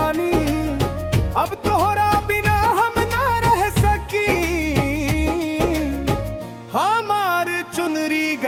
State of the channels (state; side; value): identical; both; correlation 1.00